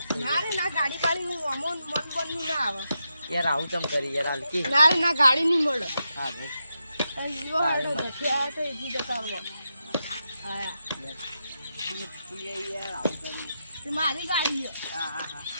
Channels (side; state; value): both; inverted; correlation -0.86